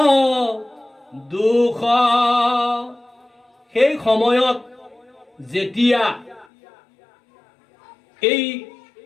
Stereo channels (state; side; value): drops out; right; at 6.5 s